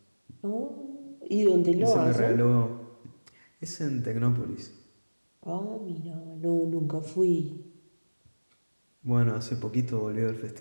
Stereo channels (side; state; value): both; inverted; correlation -1.00